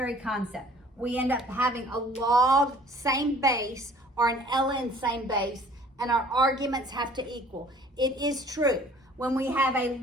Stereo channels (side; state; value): both; normal; correlation 0.52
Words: concept. We end up having a log same base or an ln same base, and our arguments have to equal. It is true. When we have a